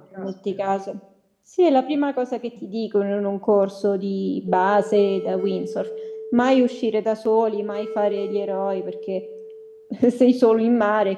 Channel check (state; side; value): identical; both; correlation 1.00